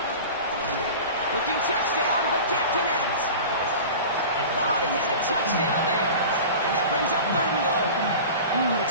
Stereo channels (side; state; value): both; inverted; correlation -0.35